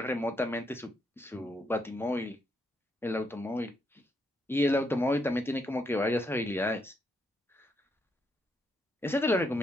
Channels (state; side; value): normal; both; correlation 0.77